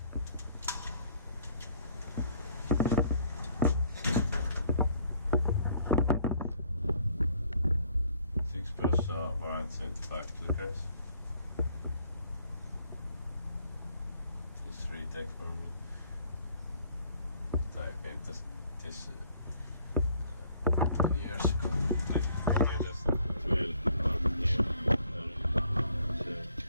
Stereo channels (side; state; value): both; inverted; correlation -0.62